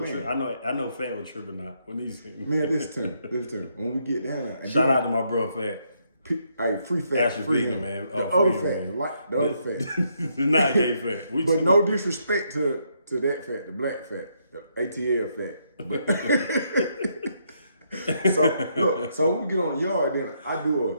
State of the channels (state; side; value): inverted; both; correlation -0.75